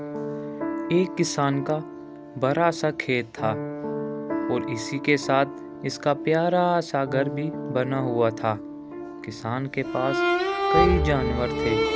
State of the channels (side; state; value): both; identical; correlation 1.00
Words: کسان کا بڑا سا کھیت تھا اور اسی کے ساتھ اس کا پیارا سا گھر بھی بنا ہوا تھا۔ کسان کے پاس کئی جانور تھے،